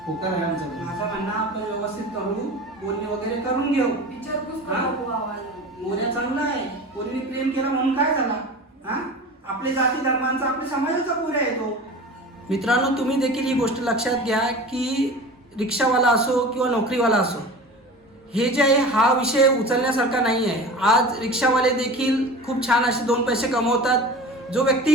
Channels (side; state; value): both; normal; correlation 0.35